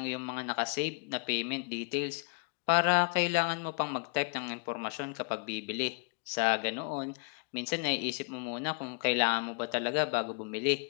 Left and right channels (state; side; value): quieter; right; 32.2 dB